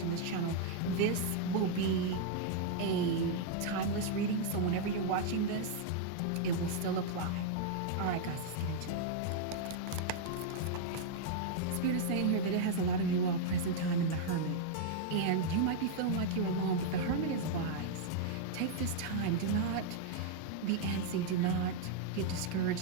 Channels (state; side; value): different; both; correlation -0.01